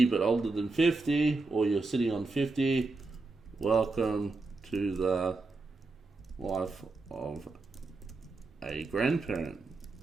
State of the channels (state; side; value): quieter; left; 3.5 dB